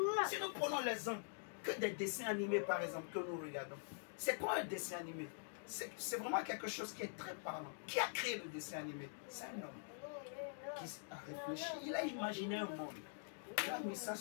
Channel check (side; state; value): right; silent; digital silence